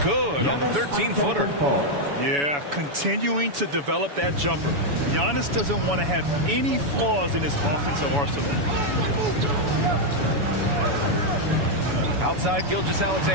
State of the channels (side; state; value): left; late; 7.0 ms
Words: Good on the 13-footer. Yeah, continuing to develop that jumper. Giannis doesn't want to have any flaws in his offensive arsenal. Outside